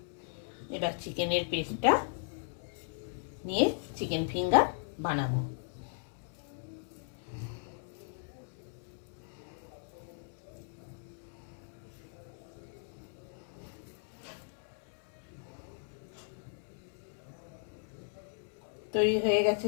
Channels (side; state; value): right; silent; digital silence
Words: এবার চিকেনের পেস্টটা নিয়ে চিকেন ফিঙ্গার বানাবো। তৈরি হয়ে গেছে